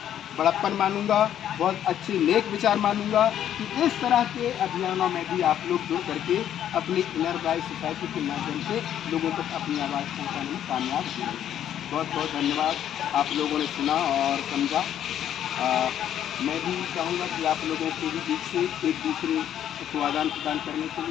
बड़प्पन मानूंगा, बहुत अच्छे नेक विचार मानूंगा कि इस तरह के अभियानों में भी आप लोग जुड़ करके अपनी इनर गाइड सोसाइटी के माध्यम से लोगों तक अपनी आवाज़ पहुँचाने में कामयाब हुए। बहुत बहुत धन्यवाद, आप लोगों ने सुना और समझा। मैं भी चाहूँगा कि आप लोगों के भी बीच से एक दूसरे को आदान प्रदान करने के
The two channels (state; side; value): quieter; right; 10.5 dB